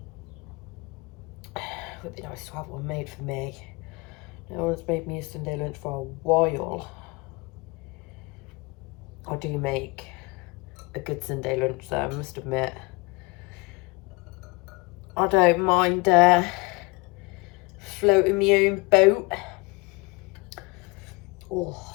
It would be nice to have one made for me. No one's made me a Sunday lunch for a while. I do make a good Sunday lunch though, I must admit. I don't mind floating my own boat. Oh,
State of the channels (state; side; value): quieter; right; 25.8 dB